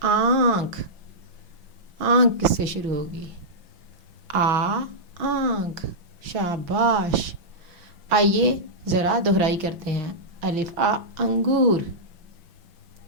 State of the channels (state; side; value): late; left; 5.9 ms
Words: آنکھ. آنکھ کس سے شروع ہوگی؟ آنکھ. شاباش. آئیے ذرا دہرائی کرتے ہیں. الف آ انگور،